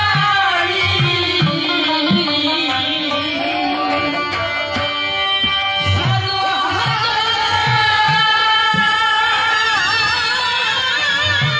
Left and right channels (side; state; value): both; identical; correlation 1.00